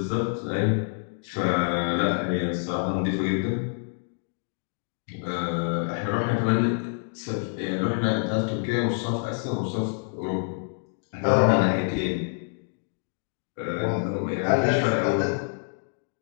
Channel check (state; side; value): silent; right; 60 dB below the other